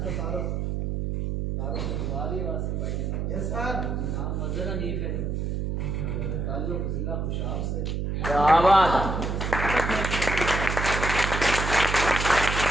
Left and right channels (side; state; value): right; noise; hum, 1 dB below the sound